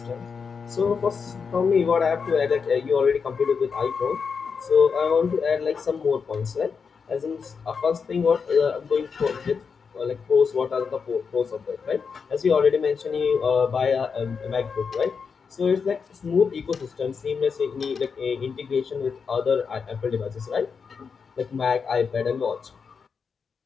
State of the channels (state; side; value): quieter; right; 5.7 dB